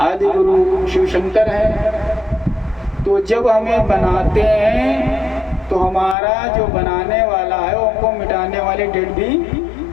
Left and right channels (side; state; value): right; drops out; at 6.2 s